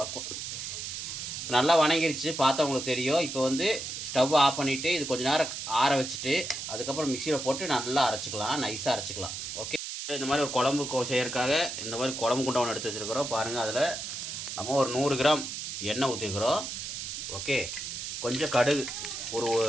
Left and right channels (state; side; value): noise; right; hiss, 6 dB below the sound